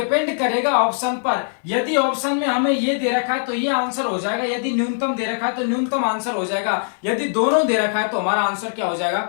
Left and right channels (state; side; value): silent; right; digital silence